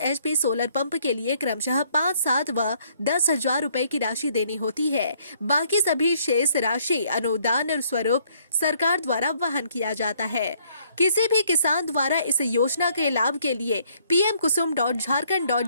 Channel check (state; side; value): inverted; both; correlation -0.65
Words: HP सोलर पंप के लिए क्रमशः 5, 7 व 10,000 रुपए की राशि देनी होती है। बाकी सभी शेष राशि अनुदान स्वरूप सरकार द्वारा वहन किया जाता है। किसी भी किसान द्वारा इस योजना के लाभ के लिए